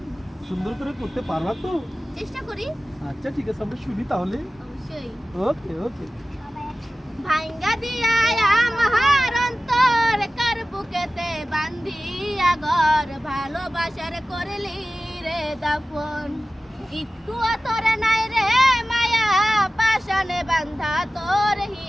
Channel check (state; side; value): normal; both; correlation 0.96